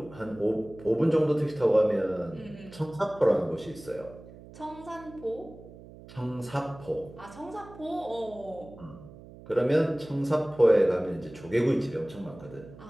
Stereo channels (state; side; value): noise; right; hum, 18 dB below the sound